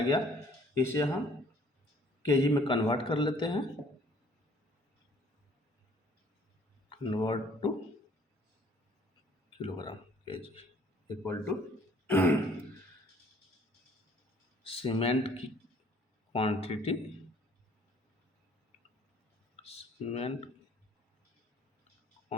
इसे हम केजी में कन्वर्ट कर लेते हैं। Convert to kilogram KG equal to cement की quantity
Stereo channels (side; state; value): both; normal; correlation 0.58